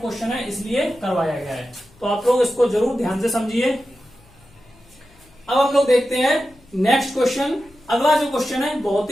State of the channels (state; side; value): noise; left; hum, 28 dB below the sound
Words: है इसलिए करवाया गया है, तो आप लोग इसको जरूर ध्यान से समझिए। अब हम लोग देखते हैं नेक्स्ट क्वेश्चन। अगला जो क्वेश्चन है बहुत